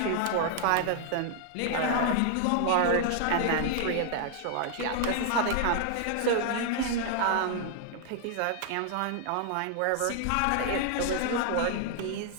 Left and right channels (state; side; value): different; both; correlation 0.00